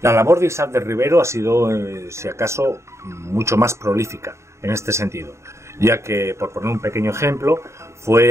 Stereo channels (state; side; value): late; left; 0.14 ms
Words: La labor de Isaac del Rivero ha sido, si acaso, mucho más prolífica en este sentido, ya que, por poner un pequeño ejemplo, fue